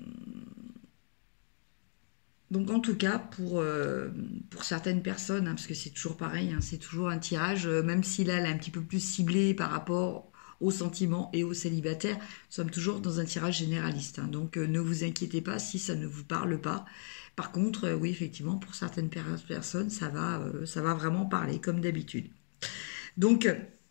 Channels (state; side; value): silent; right; 55 dB below the other